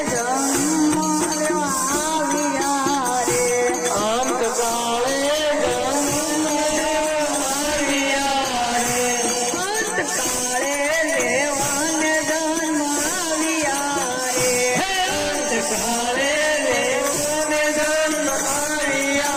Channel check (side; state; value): both; identical; correlation 1.00